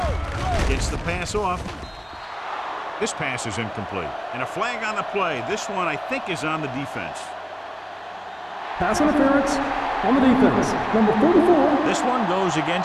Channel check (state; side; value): identical; both; correlation 1.00